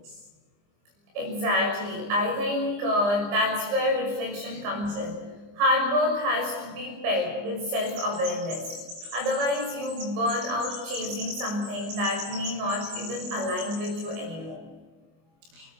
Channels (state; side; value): late; left; 25 ms